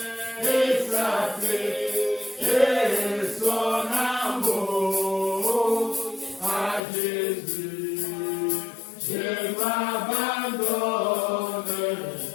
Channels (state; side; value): drops out; right; at 6.8 s